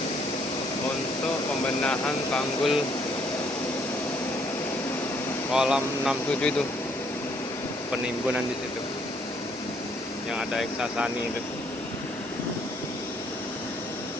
untuk pembenahan tanggul kolam 67 itu penimbunan di situ yang ada Eksasani itu.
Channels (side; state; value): both; normal; correlation 0.67